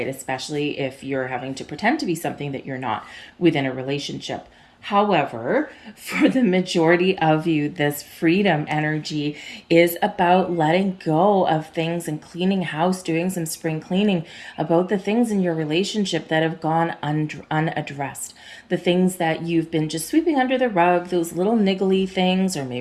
Especially if you're having to pretend to be something that you're not within a relationship. However, for the majority of you, this freedom energy is about letting go of things and cleaning house, doing some spring cleaning about the things in your relationship that have gone unaddressed. The things that you've been just sweeping under the rug, those little niggly things, or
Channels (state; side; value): identical; both; correlation 1.00